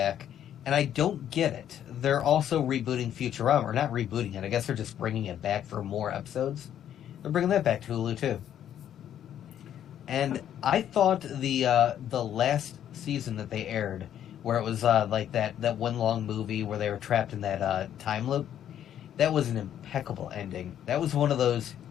and I don't get it, they're also rebooting Futurama, or not rebooting it. I guess they're just bringing it back for more episodes. They're bringing that back to Hulu too. And I thought the last season that they aired, where it was like that one long movie where they were trapped in that time loop, that was an impeccable ending. That was one of those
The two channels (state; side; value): quieter; right; 10.4 dB